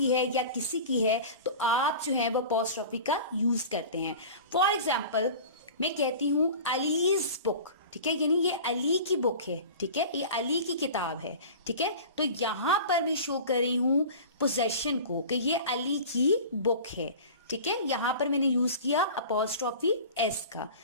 है या किसी की है, तो आप जो है वो अपॉस्ट्रोफी का यूज करते हैं। फॉर एग्जाम्पल मैं कहती हूं अलीज बुक, ठीक है, यानी ये अली की बुक है, ठीक है, ये अली की किताब है, ठीक है। तो यहां पर मैं शो कर रही हूं पोजेशन को कि ये अली की बुक है, ठीक है। यहां पर मैंने यूज किया अपॉस्ट्रोफी एस का।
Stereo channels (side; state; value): both; inverted; correlation -0.37